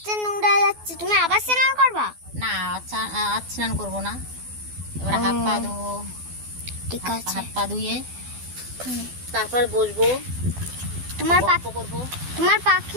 নোংরা যাচ্ছে, তুমি আবার স্নান করবা? না, আজ স্নান করবো না, এবার হাত পা ধোবো। ঠিক আছে। হাত পা ধুয়ে তারপর বসবো, তোমার গল্প করবো। তোমার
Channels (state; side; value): late; left; 12 ms